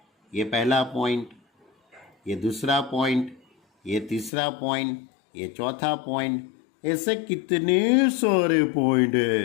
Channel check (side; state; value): right; drops out; at 4.3 s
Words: ये पहला पॉइंट, ये दूसरा पॉइंट, ये तीसरा पॉइंट, ये चौथा पॉइंट, ऐसे कितने सारे पॉइंट